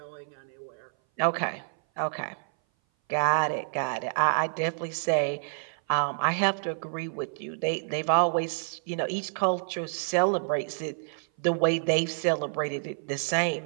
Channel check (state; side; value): silent; left; 57 dB below the other